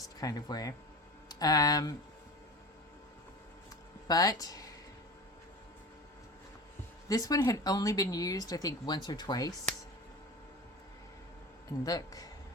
kind of way. But this one had only been used, I think, once or twice. And look,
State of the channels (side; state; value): both; normal; correlation 0.32